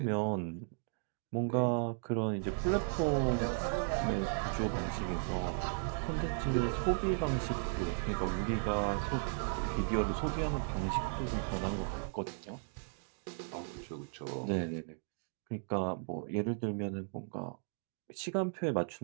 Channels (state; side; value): silent; left; 54 dB below the other